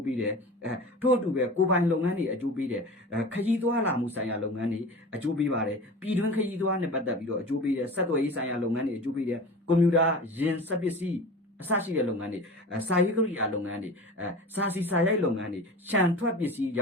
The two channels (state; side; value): normal; both; correlation 0.35